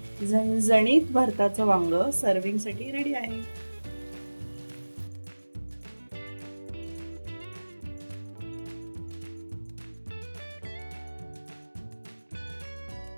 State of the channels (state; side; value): inverted; both; correlation -1.00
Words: झणझणीत भरताचं वांग सर्विंगसाठी रेडी आहे.